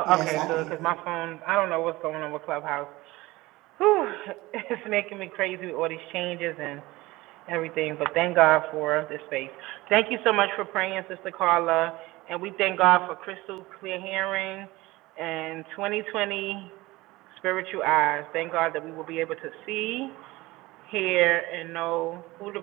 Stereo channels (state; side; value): quieter; left; 20.0 dB